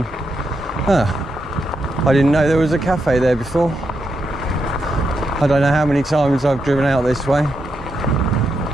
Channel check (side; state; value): both; normal; correlation 0.83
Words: I didn't know there was a cafe there before. I don't know how many times I've driven out this way.